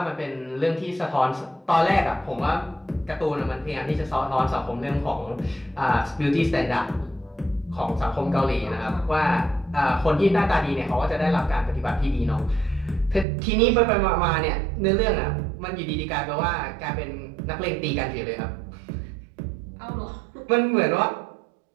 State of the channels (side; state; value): left; drops out; at 13.2 s